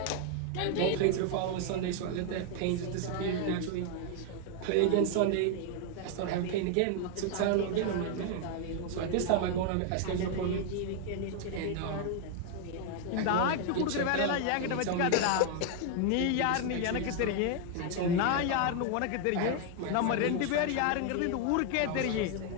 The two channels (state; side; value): different; both; correlation 0.00